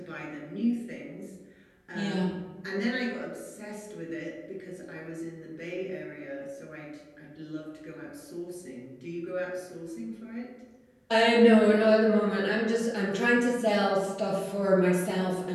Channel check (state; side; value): identical; both; correlation 1.00